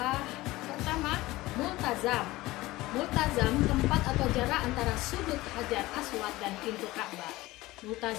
pertama, Multazam. Multazam tempat atau jarak antara sudut Hajar Aswad dan pintu Ka'bah.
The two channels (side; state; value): right; quieter; 18.9 dB